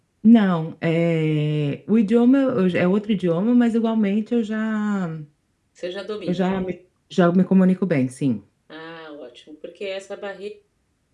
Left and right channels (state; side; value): identical; both; correlation 1.00